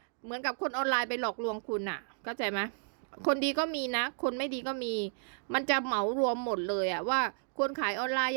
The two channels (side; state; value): left; silent; digital silence